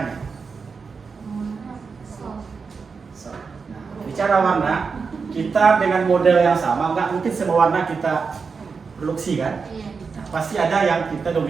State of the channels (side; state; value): left; quieter; 5.1 dB